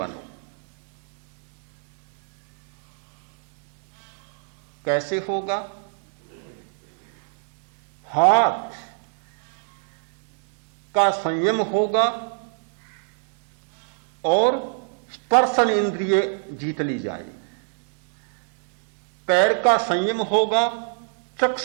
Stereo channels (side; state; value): left; silent; 64 dB below the other